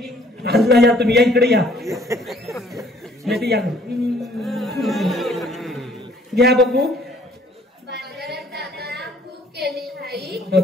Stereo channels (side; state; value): both; normal; correlation 0.59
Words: आजला या तुम्ही या इकडे या नाही या घ्या बघू बाजारात जाताना खूप केली घाई.